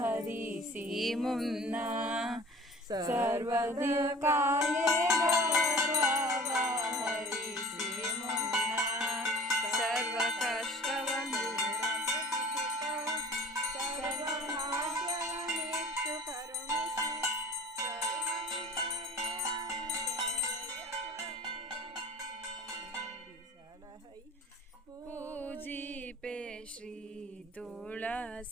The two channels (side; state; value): both; normal; correlation 0.44